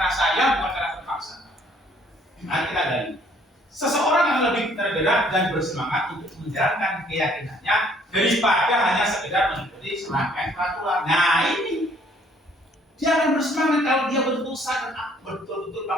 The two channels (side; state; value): both; normal; correlation 0.61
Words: saya, bukan karena terpaksa. Nanti kita gali. Seseorang yang lebih tergerak dan bersemangat untuk menjalankan keyakinannya daripada hanya sekedar mengikuti serangkaian peraturan. Nah ini dia akan bersemangat kalau dia betul-betul sadar, betul-betul